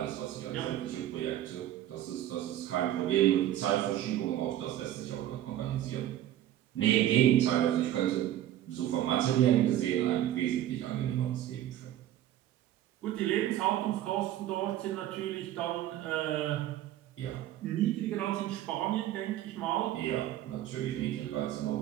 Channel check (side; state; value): left; quieter; 12.5 dB